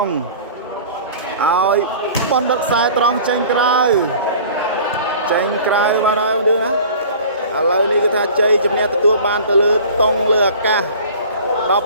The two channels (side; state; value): both; inverted; correlation -0.43